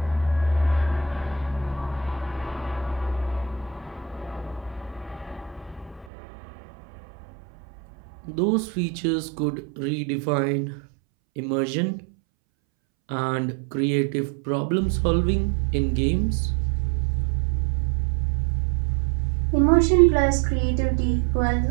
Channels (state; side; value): drops out; left; at 6.1 s